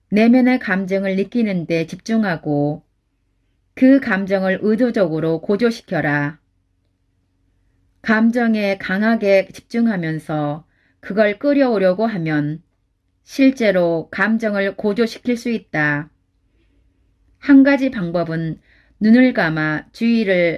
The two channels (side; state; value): both; identical; correlation 1.00